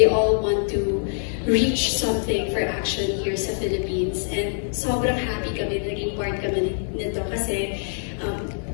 all want to reach something for action here sa Philippines. And sobrang happy kami, naging part kami nito kasi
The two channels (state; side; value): silent; right; digital silence